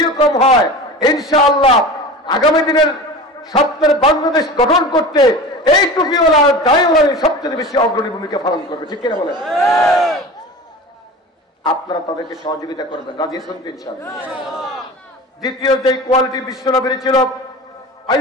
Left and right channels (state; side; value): normal; both; correlation 0.34